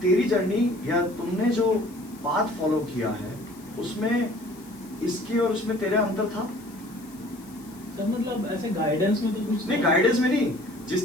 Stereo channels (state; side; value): noise; left; hiss, 23 dB below the sound